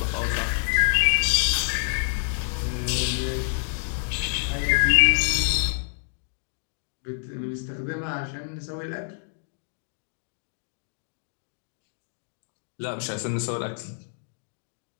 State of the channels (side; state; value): right; silent; digital silence